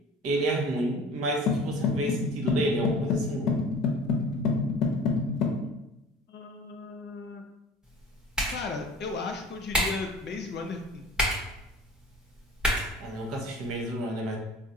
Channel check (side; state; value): both; normal; correlation 0.43